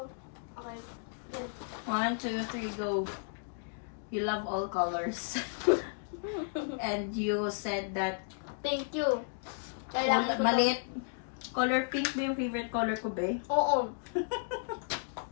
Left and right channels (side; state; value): right; silent; digital silence